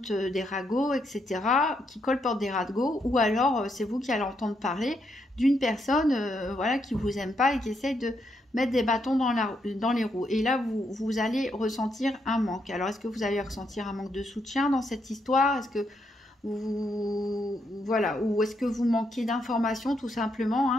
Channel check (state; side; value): normal; both; correlation 0.78